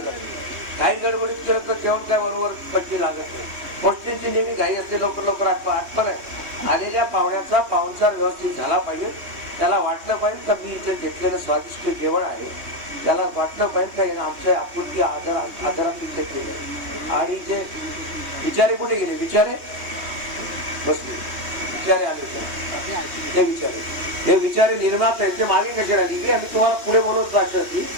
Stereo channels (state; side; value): late; left; 3.1 ms